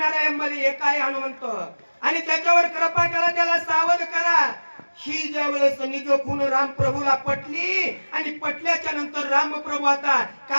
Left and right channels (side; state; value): both; inverted; correlation -1.00